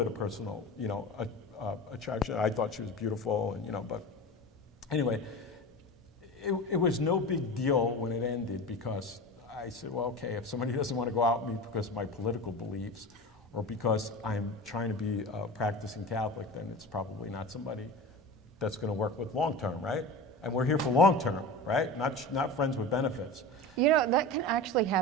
of personal, attraction. I thought she was beautiful, and but anyway, it was no big deal when it ended, because I said, well, okay, if somebody doesn't want to go out with me because of my political beliefs or because I'm trying to be a practicing Catholic, then it's probably not somebody that's going to work with long term, right? And we're here for long term, right? Not friends with benefits. That can actually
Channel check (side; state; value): both; normal; correlation 0.30